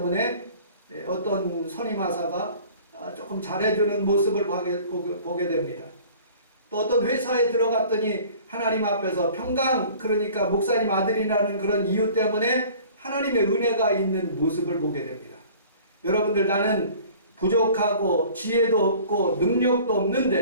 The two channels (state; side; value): inverted; both; correlation -0.48